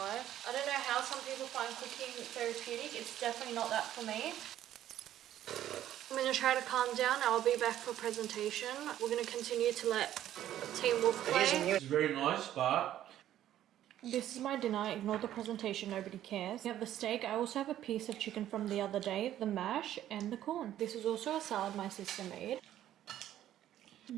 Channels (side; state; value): left; quieter; 12.1 dB